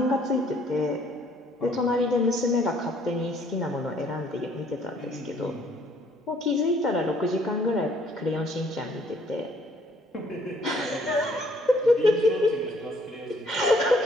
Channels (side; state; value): both; normal; correlation 0.63